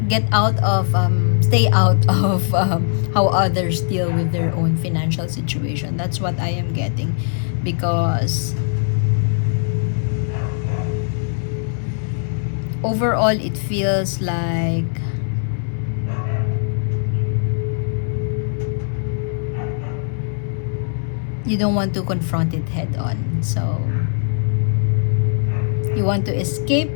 get out of stay out of how others deal with their own financial situation. That's what I am getting, because overall it feels like you don't want to confront it head on. So You want to escape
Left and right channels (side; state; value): right; silent; 62 dB below the other